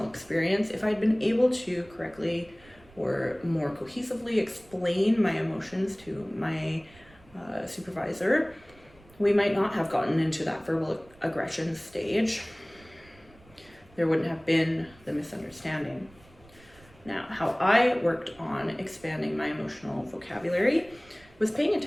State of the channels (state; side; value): noise; right; rumble, 26 dB below the sound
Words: experience, if I'd been able to correctly or more cohesively explain my emotions to my supervisor, we might not have gotten into that verbal aggression stage. There wouldn't have been the misunderstanding. Now, how I worked on expanding my emotional vocabulary was paying